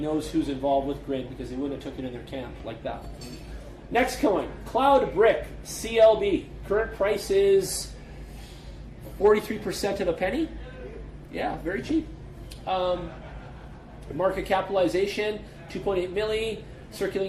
who's involved with Grid because they wouldn't have took it in their camp like that. Next coin, Cloud Brick, CLB. Current price is 43% of a penny. Yeah, very cheap. Market capitalization, 2.8 milli.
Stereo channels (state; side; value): identical; both; correlation 1.00